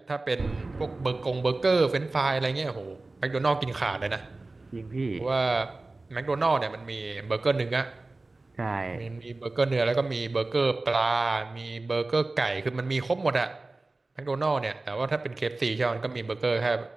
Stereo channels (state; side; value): quieter; left; 3.2 dB